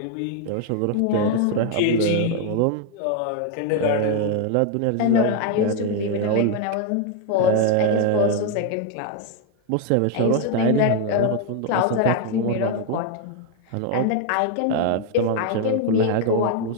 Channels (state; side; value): different; both; correlation 0.01